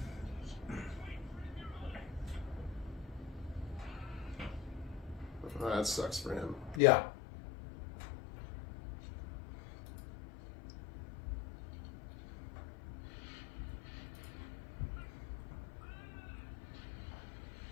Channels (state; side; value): drops out; right; at 6.8 s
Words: that sucks for him. Yeah.